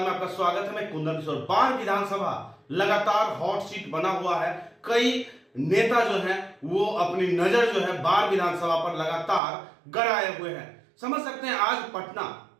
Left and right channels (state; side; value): drops out; left; at 9.4 s